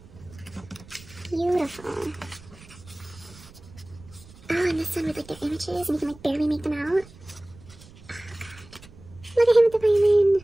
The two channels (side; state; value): right; noise; rumble, 21 dB below the sound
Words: Beautiful. Oh, and this one with like their images, and you can like barely make them out. Oh god. Look at him with the violin